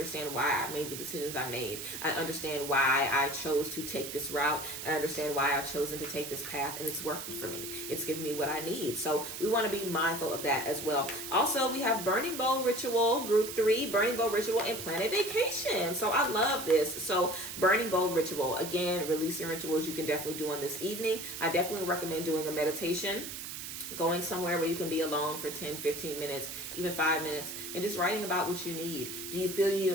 why I made the decisions I made. I understand why I chose to take this route. I understand why I've chosen to take this path, and it's working for me. It's giving me what I need. So we want to be mindful of that as well. Also, we have Burning Bowl Ritual, Group 3, Burning Bowl Ritual, and Plan a Vacation. So I love this. So Burning Bowl Ritual, again, releasing rituals you can definitely do on this evening. I definitely recommend doing a meditation, going somewhere where you can be alone for 10, 15 minutes, even 5 minutes, and just writing about what you need. Do you feel you need a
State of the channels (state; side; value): noise; right; hiss, 8 dB below the sound